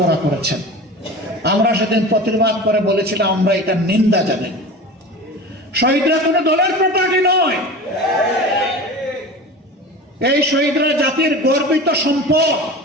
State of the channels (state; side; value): normal; both; correlation 0.33